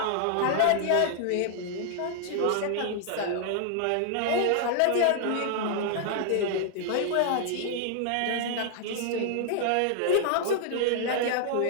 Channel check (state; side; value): different; both; correlation 0.00